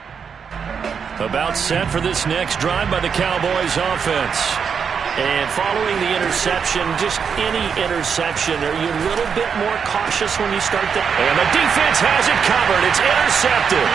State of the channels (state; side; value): quieter; left; 6.6 dB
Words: About set for this next drive by the Cowboys offense. And following the interception, just any interception, are you a little bit more cautious when you start that? And the defense has it covered. It's intercepted.